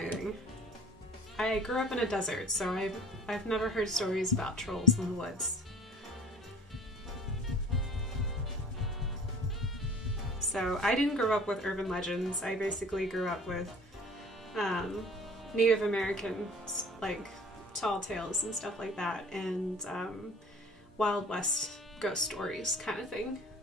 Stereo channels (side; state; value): both; normal; correlation 0.47